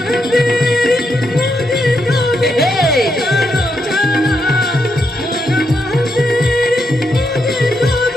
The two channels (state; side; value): normal; both; correlation 0.81